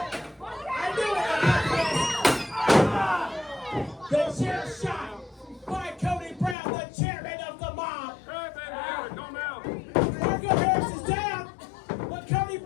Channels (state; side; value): drops out; right; at 6.6 s